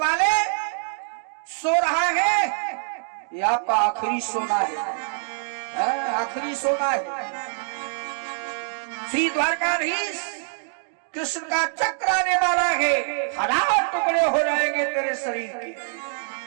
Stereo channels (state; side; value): silent; left; 62 dB below the other